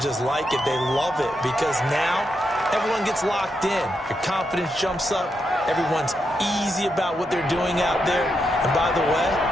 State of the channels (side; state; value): both; normal; correlation 0.83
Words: just like it. They love it because now everyone gets locked in. Your confidence jumps up. Everyone's easy about what they're doing out there. And by the way,